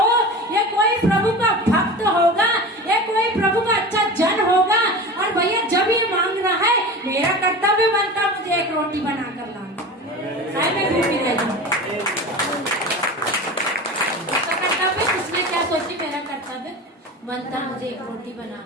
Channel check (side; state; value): both; normal; correlation 0.32